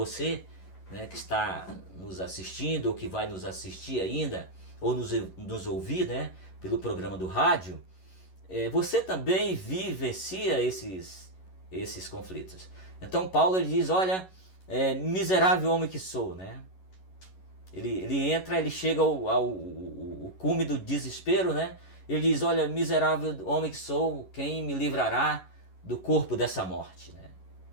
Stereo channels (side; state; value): right; late; 11 ms